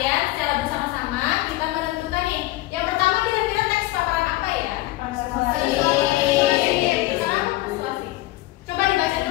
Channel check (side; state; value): right; quieter; 18.2 dB